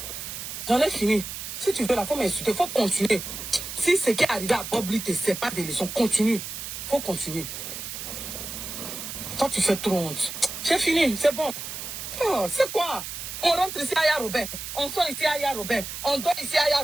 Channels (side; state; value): right; noise; hiss, 8 dB below the sound